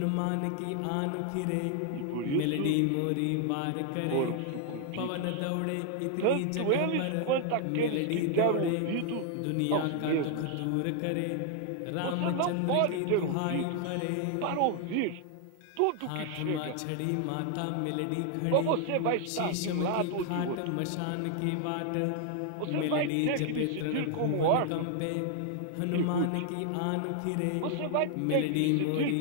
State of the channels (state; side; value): different; both; correlation 0.00